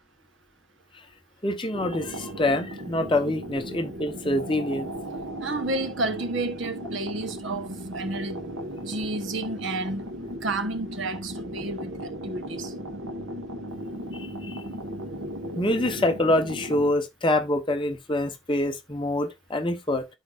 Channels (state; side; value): normal; both; correlation 0.50